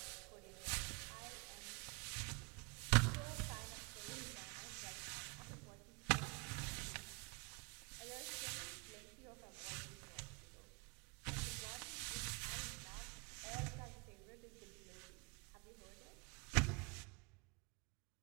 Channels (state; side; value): quieter; left; 30.9 dB